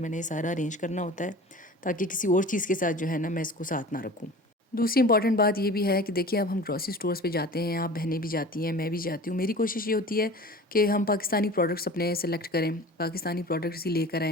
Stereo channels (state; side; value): normal; both; correlation 0.39